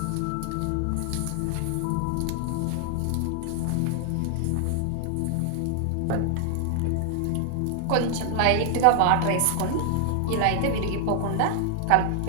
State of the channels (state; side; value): different; both; correlation 0.00